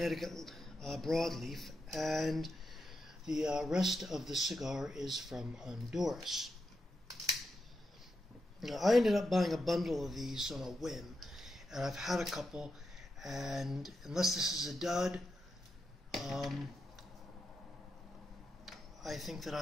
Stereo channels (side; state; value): both; normal; correlation 0.86